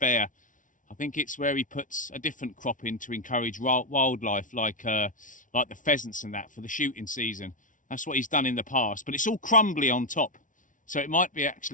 I think it's where he puts a different crop in to encourage wildlife, like the pheasants and that for the shooting season. That's what he's done in the past, but it's all crumbly on top. So it might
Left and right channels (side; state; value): right; late; 0.38 ms